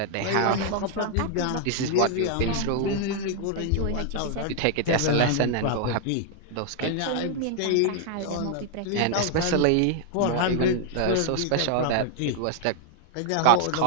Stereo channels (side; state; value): both; different; correlation 0.00